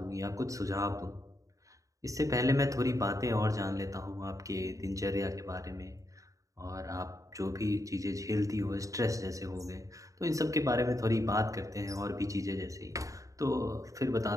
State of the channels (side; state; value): left; late; 0.16 ms